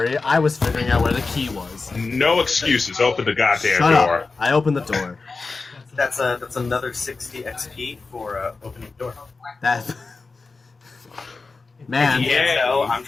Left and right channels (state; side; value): quieter; right; 4.1 dB